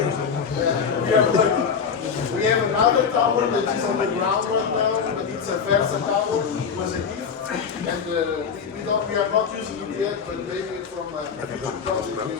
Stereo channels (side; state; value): right; quieter; 6.4 dB